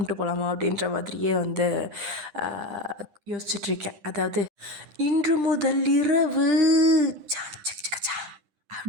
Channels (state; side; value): late; left; 10 ms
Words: போகலாமா அப்படின்ற மாதிரியே வந்து யோசிச்சுட்ருக்கேன். அதாவது இன்று முதல் இரவு